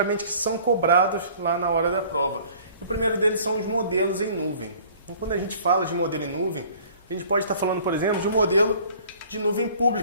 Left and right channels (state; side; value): inverted; both; correlation -0.51